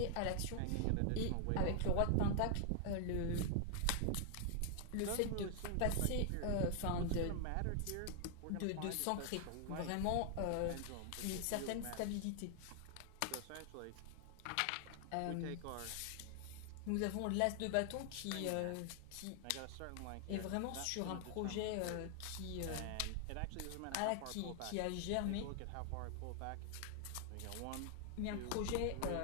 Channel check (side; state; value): both; different; correlation 0.00